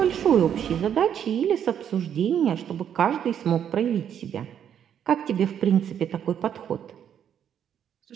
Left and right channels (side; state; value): left; quieter; 9.1 dB